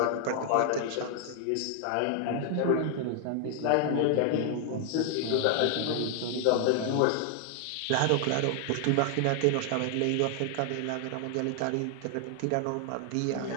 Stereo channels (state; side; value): different; both; correlation 0.00